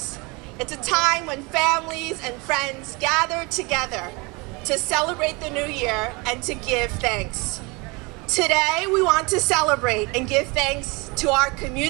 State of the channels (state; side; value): quieter; left; 27.1 dB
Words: It's a time when families and friends gather together to celebrate the new year and to give thanks. Today, we want to celebrate and give thanks to our